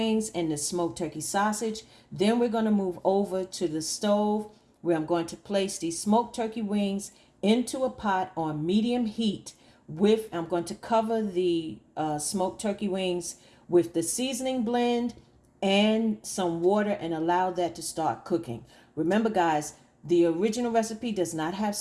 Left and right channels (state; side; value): identical; both; correlation 1.00